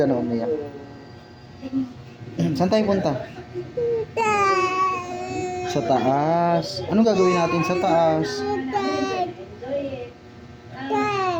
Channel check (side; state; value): both; identical; correlation 1.00